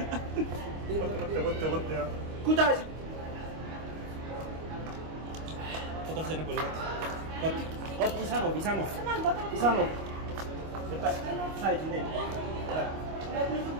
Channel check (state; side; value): late; left; 25 ms